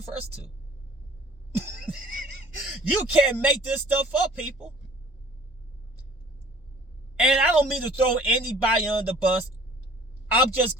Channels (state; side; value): normal; both; correlation 0.50